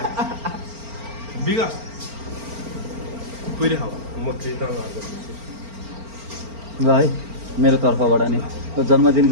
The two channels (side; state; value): left; late; 4.4 ms